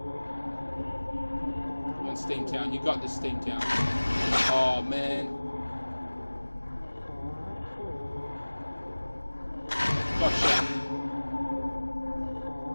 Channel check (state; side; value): inverted; both; correlation -1.00